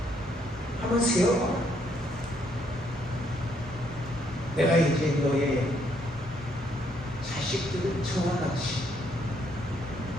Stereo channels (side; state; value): both; normal; correlation 0.71